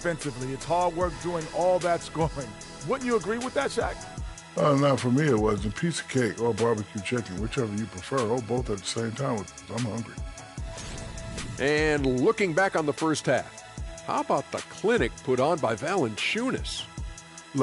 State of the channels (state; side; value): identical; both; correlation 1.00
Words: It's hard work doing all that scoring. Wouldn't you agree with that, Shaq? Not for me. It was a piece of cake or barbecue chicken, whichever you prefer, or both at the same time. I'm hungry. And looking back on the first half, how about the clinic put on by Valanciunas?